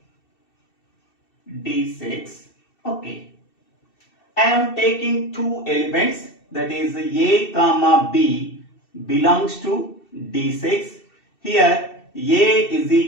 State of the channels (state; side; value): late; right; 2.7 ms